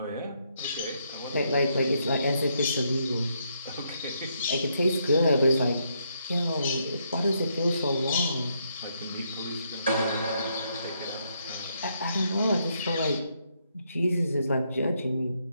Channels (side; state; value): both; inverted; correlation -0.76